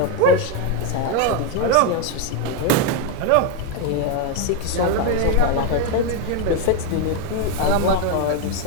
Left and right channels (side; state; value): both; different; correlation 0.01